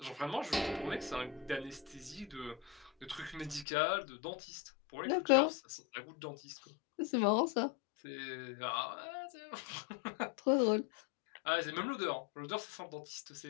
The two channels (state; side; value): drops out; right; at 3.7 s